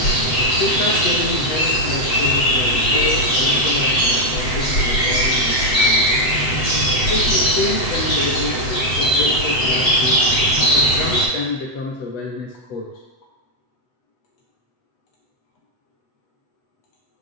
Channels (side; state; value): right; late; 7.8 ms